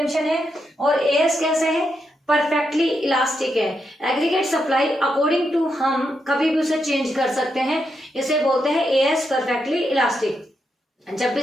है। और एएस कैसे है? परफेक्टली इलास्टिक है। एग्रीगेट सप्लाई अकॉर्डिंग टू हम कभी भी उसे चेंज कर सकते हैं, इसे बोलते हैं एएस परफेक्टली इलास्टिक। जब भी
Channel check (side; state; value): both; normal; correlation 0.83